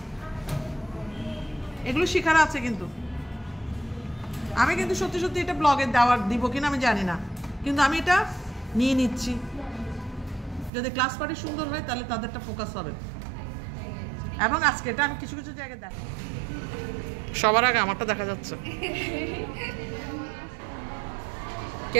এগুলো শেখার আছে কিন্তু। আমি কিন্তু সত্যি এটা ব্লগে দিব কিনা আমি জানি না, কিন্তু আমি এটা নিয়ে নিচ্ছি। যদি ক্লাস পার্টি সুন্দর হয় তাহলে তাদেরটা ফোকাস হবে। এবং আজকে এটা আমি কিছু জায়গায় দেখ, সবার আগে আমারটা দেখা যাচ্ছে।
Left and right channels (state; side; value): drops out; left; at 10.7 s